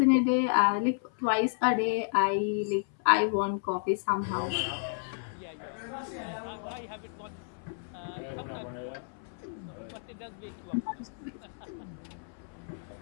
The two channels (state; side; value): silent; right; 57 dB below the other